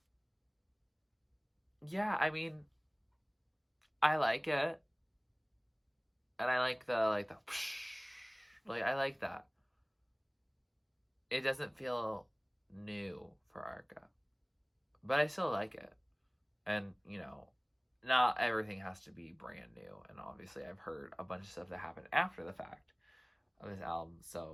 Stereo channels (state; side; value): identical; both; correlation 1.00